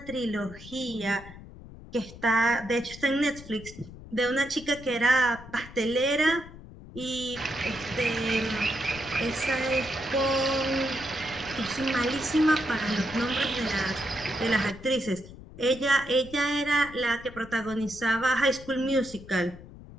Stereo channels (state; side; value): noise; left; rumble, 16 dB below the sound